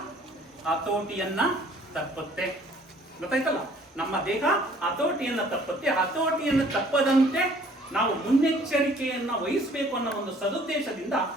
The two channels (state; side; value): normal; both; correlation 0.56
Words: ಹತೋಟಿಯನ್ನ ತಪ್ಪುತ್ತೆ. ಗೊತ್ತಾಯ್ತಲ್ಲ? ನಮ್ಮ ದೇಹ ಹತೋಟಿಯನ್ನ ತಪ್ಪುತ್ತೆ. ಹತೋಟಿಯನ್ನು ತಪ್ಪದಂತೆ ನಾವು ಮುನ್ನೆಚ್ಚರಿಕೆಯನ್ನ ವಹಿಸಬೇಕು ಅನ್ನೋ ಒಂದು ಸದುದ್ದೇಶದಿಂದ